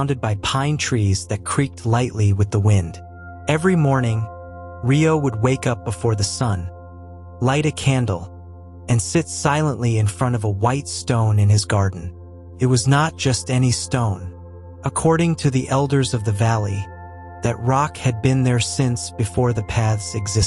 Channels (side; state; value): both; identical; correlation 1.00